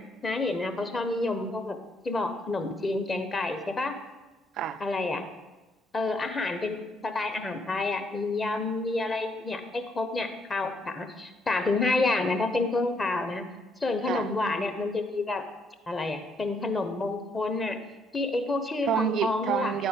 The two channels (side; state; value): both; normal; correlation 0.71